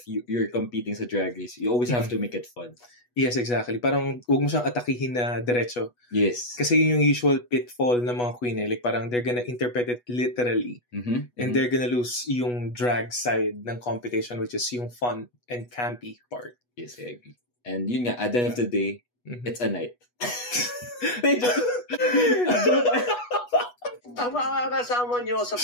you're competing sa Drag Race. You always have to make it fun. Yes, exactly. Parang huwag mo siyang atakihin na diretso. Yes. Kasi yun yung usual pitfall ng mga queen eh. Like parang they're gonna interpret it literally. And they're gonna lose yung drag side ng competition, which is yung fun and campy part. Yes, I agree. And yun nga, at the end of the day, it's a night. Ang mga kasama nyo sa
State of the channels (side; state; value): right; late; 8.2 ms